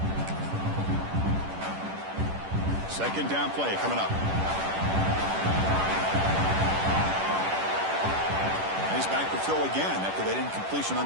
Second down play coming up. He's back to throw again after that incompletion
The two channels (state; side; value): late; left; 10 ms